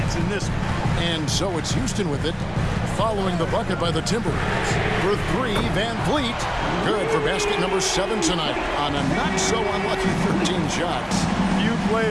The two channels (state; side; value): identical; both; correlation 1.00